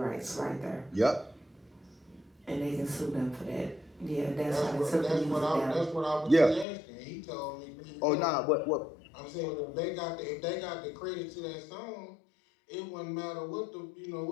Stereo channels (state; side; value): drops out; right; at 6.7 s